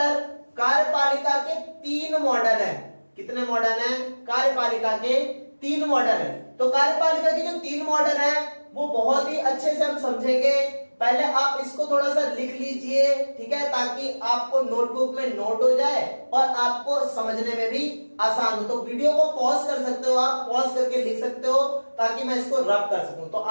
कार्यपालिका के 3 मॉडल हैं। कितने मॉडल हैं? कार्यपालिका के 3 मॉडल हैं। तो कार्यपालिका के जो 3 मॉडल हैं वो बहुत ही अच्छे से हम समझेंगे। पहले आप इसको थोड़ा सा लिख लीजिए, ठीक है, ताकि आपको नोटबुक में नोट हो जाए और आपको समझने में भी आसान हो। तो वीडियो को पॉज कर सकते हो, आप पॉज करके लिख सकते हो ताकि मैं इसको रब कर सकूं। तो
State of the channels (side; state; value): both; inverted; correlation -1.00